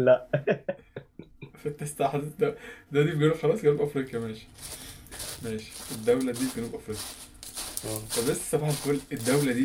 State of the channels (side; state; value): both; identical; correlation 1.00